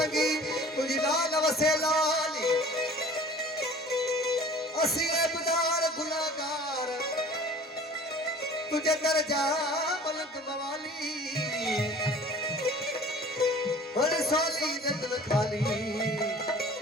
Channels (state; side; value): normal; both; correlation 0.46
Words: तुझी लाल वसे लाली असी ऐबदार गुनाहगार तुझे दर्जा मलक मवाली हर सोली दिल खाली